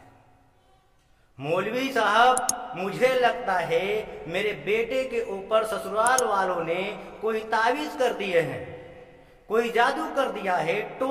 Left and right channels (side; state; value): both; identical; correlation 1.00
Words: मौलवी साहब, मुझे लगता है मेरे बेटे के ऊपर ससुराल वालों ने कोई तावीज कर दिए हैं, कोई जादू कर दिया है,